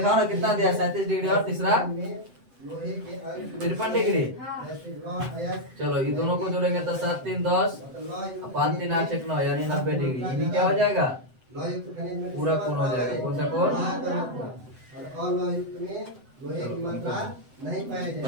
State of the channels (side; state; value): left; late; 7.8 ms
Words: ना कितना दिया, 37 डिग्री और तीसरा 53 डिग्री। चलो ये दोनों को जोड़ेंगे तो 7 3 10 5 3 8 6 9 यानी 90 डिग्री, ये क्या हो जाएगा पूरा कोण हो जाएगा। कौन सा कोण, और लोहयुक्त में लोहे की मात्रा नहीं पाया जाएगा।